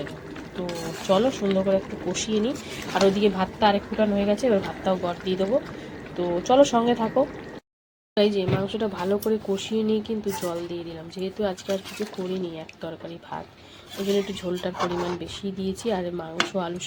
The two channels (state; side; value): identical; both; correlation 1.00